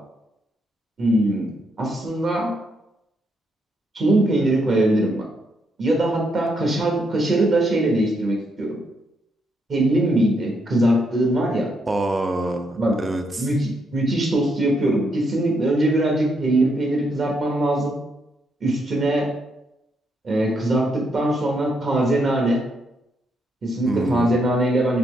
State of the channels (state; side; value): normal; both; correlation 0.77